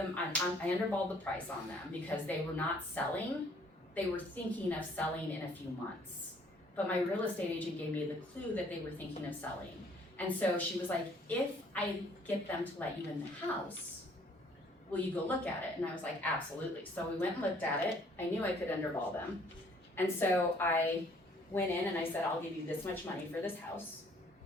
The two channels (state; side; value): normal; both; correlation 0.60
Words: I underballed the price on them because they were not selling. They were thinking of selling in a few months. But my real estate agent gave me the clue that they were thinking of selling. And so she was like, if I get them to let you in the house, will you go look at it? And I was like, absolutely. So we went and looked at it. I knew I could underball them. And so I went in and I said, I'll give you this much money for this house.